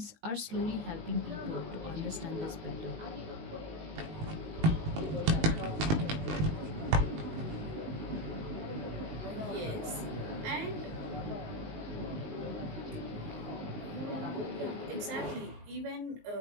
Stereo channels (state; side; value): late; left; 19 ms